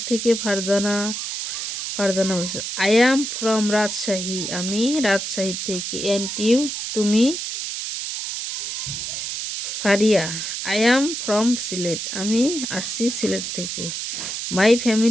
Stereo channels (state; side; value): noise; right; hiss, 5 dB below the sound